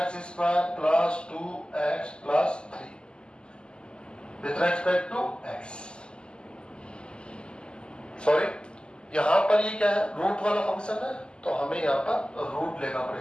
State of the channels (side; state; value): right; late; 0.049 ms